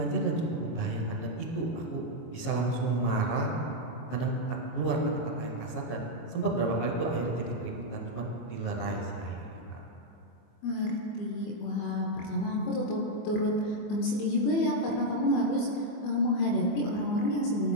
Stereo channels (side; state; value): right; late; 24 ms